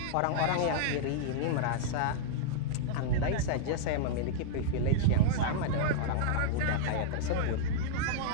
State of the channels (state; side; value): different; both; correlation -0.02